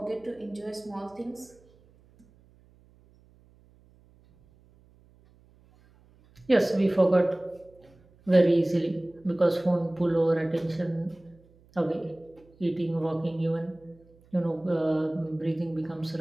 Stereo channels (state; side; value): noise; right; hum, 29 dB below the sound